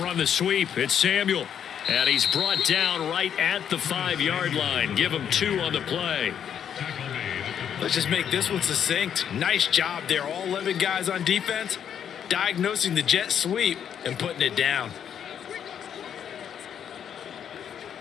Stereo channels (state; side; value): quieter; right; 8.7 dB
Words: run the sweep. It's Samuel. And he's brought down right at the 5-yard line. Give him 2 on the play. Let's just make this one succinct. Nice job there. All 11 guys on defense diagnosing the jet sweep and putting it down.